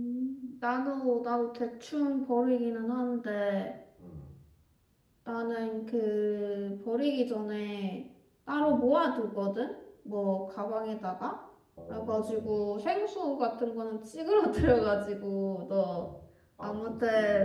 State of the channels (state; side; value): identical; both; correlation 1.00